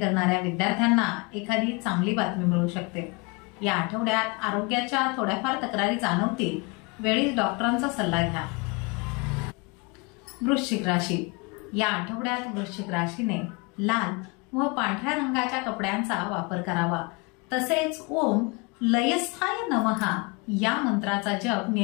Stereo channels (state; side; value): quieter; right; 29.1 dB